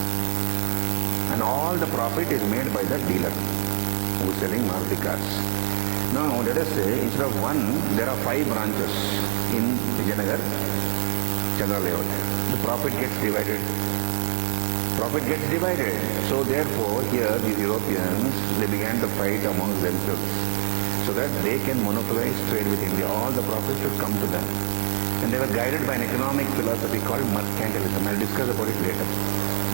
And all the profit is made by the dealer who is selling Maruti cars. Now let us say instead of one, there are 5 branches in Vijayanagar, Chandra layout. The profit gets divided. Profit gets divided. So therefore here these Europeans, they began to fight amongst themselves so that they can monopolize trade with India. All the profits should come to them. And they were guided by an economic philosophy called mercantilism. I'll discuss about it later.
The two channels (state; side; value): silent; left; 62 dB below the other